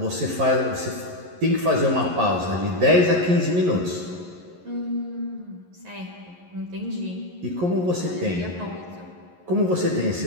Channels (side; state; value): left; late; 11 ms